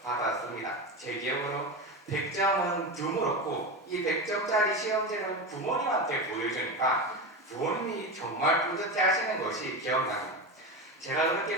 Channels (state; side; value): normal; both; correlation 0.20